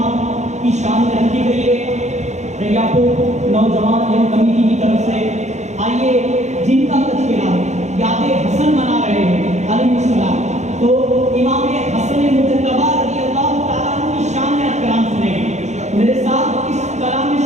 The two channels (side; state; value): left; late; 0.33 ms